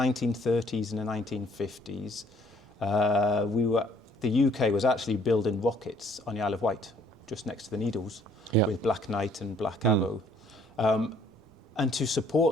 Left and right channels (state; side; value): normal; both; correlation 0.61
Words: and the 1950s, the UK was actually building rockets on the Isle of Wight, just next to the Needles, with Black Knight and Black Arrow. And to